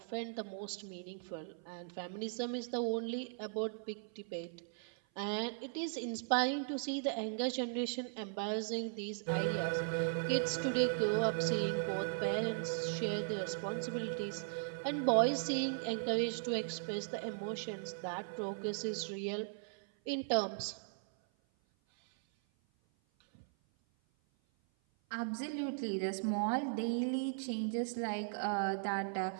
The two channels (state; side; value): silent; left; 52 dB below the other